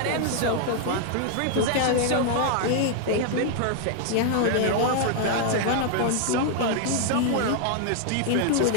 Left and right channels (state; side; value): different; both; correlation 0.00